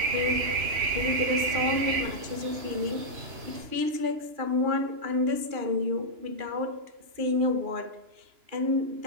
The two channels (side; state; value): left; late; 2.9 ms